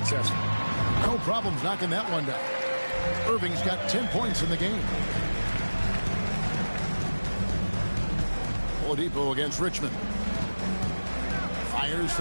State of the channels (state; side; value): inverted; both; correlation -1.00